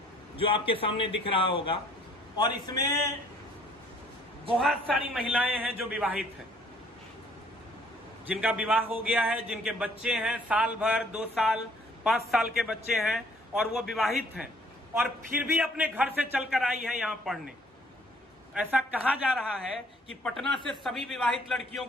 जो आपके सामने दिख रहा होगा और इसमें बहुत सारी महिलाएं हैं जो विवाहित हैं, जिनका विवाह हो गया है, जिनके बच्चे हैं, साल भर, 2 साल, 5 साल के बच्चे हैं और वो विवाहित हैं और फिर भी अपने घर से चलकर आई है यहाँ पढ़ने। ऐसा कहा जा रहा है कि पटना से सभी विवाहित लड़कियों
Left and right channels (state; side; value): normal; both; correlation 0.59